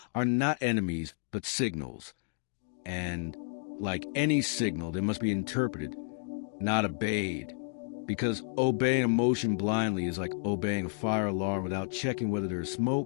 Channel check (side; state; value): right; silent; digital silence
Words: are not enemies, but signals. And like any signal, they must be interpreted, not obeyed. Because obeying emotion blindly is like obeying a fire alarm without checking whether there is